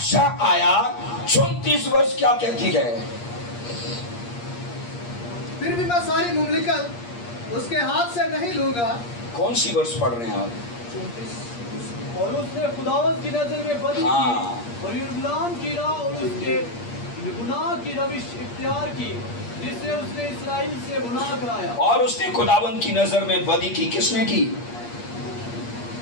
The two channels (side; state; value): right; late; 8.5 ms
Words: आया। 34 वर्ष क्या कहती है? फिर भी मैं सारी मुमलिकत उसके हाथ से नहीं लूंगा। कौन सी वर्ष पढ़ रहे हैं आप? 34। और उसने खुदावंद की नजर में बदी हाँ। की और यरूशलेम की राह और उसके गुनाह की रविश इख्तियार की, जिससे उसने इस्राएल से गुनाह कराया। और उसने खुदावंद की नजर में बदी की। किसने की?